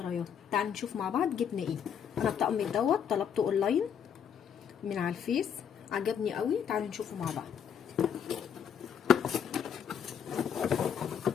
تعالوا نشوف مع بعض جبنا ايه. انا الطقم دوت طلبته اونلاين من على الفيس، عجبني قوي. تعالوا نشوفه مع بعض.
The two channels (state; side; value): quieter; right; 8.0 dB